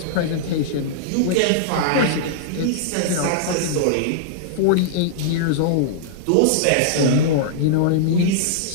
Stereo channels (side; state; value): both; different; correlation -0.01